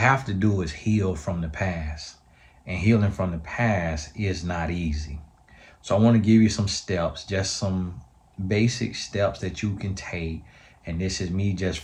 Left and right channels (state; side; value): identical; both; correlation 1.00